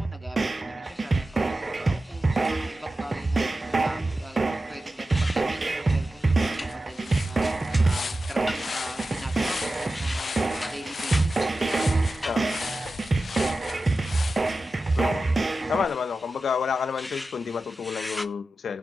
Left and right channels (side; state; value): both; normal; correlation 0.93